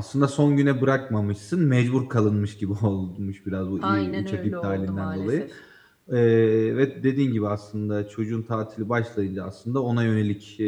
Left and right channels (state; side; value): identical; both; correlation 1.00